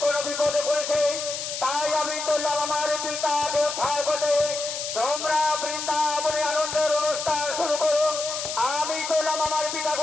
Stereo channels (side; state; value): left; noise; hiss, 5 dB below the sound